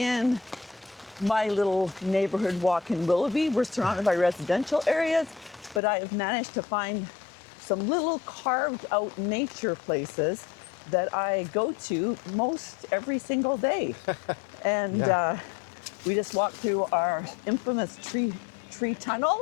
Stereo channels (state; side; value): drops out; right; at 5.8 s